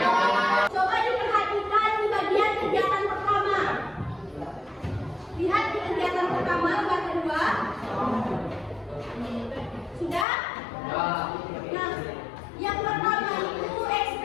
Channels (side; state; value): right; drops out; at 10.2 s